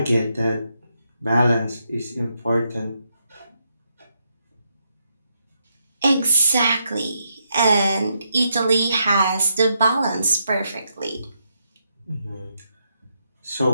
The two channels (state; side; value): inverted; both; correlation -0.80